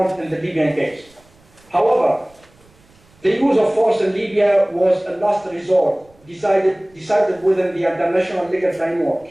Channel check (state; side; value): noise; right; rumble, 30 dB below the sound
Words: in the Libyan case. However, the use of force in Libya was a last resort, decided within the international legal framework,